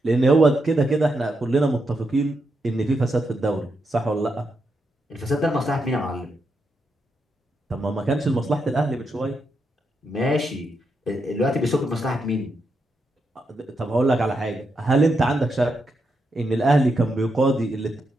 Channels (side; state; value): both; normal; correlation 0.83